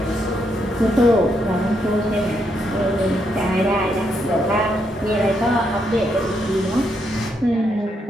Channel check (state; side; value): normal; both; correlation 0.78